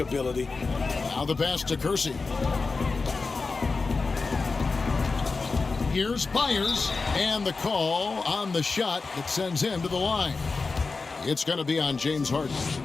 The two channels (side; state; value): right; quieter; 4.1 dB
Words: Now the pass to Kersey. Here's Byers, and the call on the shot that sends him to the line. It's going to be on James Harden.